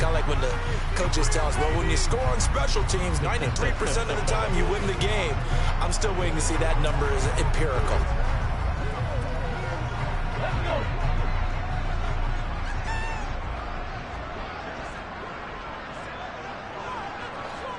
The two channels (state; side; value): identical; both; correlation 1.00